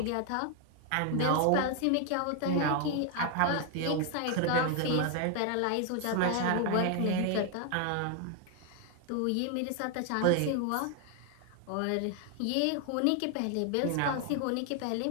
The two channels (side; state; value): both; different; correlation 0.00